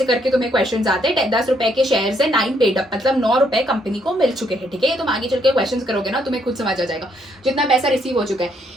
करके तुम्हें क्वेश्चंस आते हैं। 10 रुपए के शेयर से 9 पेड अप मतलब 9 रुपए कंपनी को मिल चुके हैं, ठीक है। ये तुम आगे चल के क्वेश्चंस करोगे ना, तुम्हें खुद समझ आ जाएगा जितना पैसा रिसीव हो चुका है।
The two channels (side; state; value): both; normal; correlation 0.72